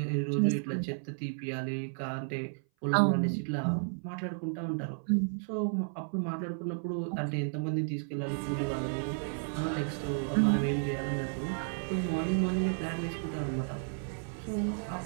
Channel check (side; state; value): left; silent; 56 dB below the other